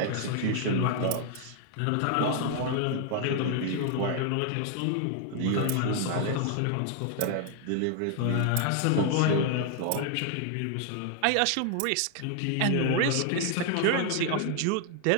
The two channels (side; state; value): both; different; correlation 0.00